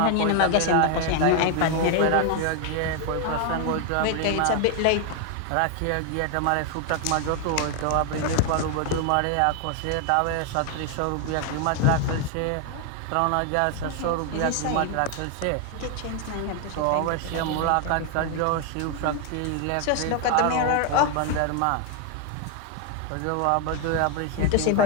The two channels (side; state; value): both; different; correlation 0.00